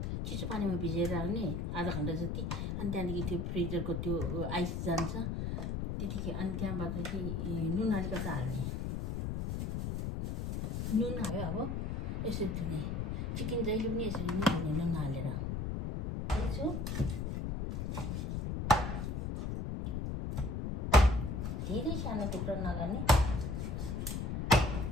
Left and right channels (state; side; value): noise; left; rumble, 2 dB below the sound